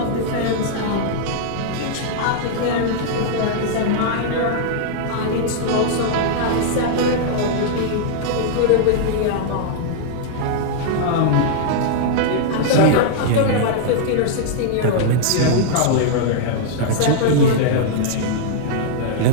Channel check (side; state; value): both; different; correlation -0.01